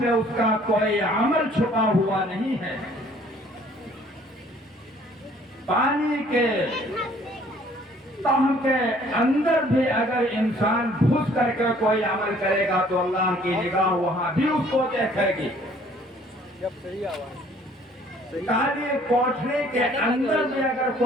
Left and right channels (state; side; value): normal; both; correlation 0.57